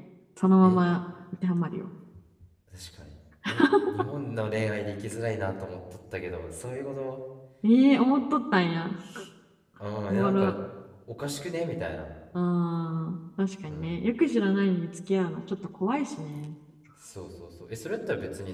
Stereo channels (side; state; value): both; identical; correlation 1.00